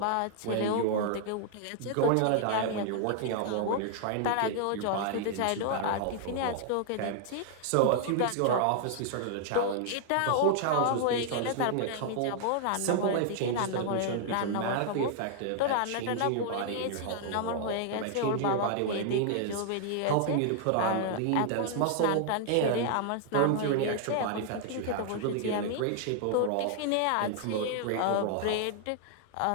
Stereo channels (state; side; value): different; both; correlation -0.01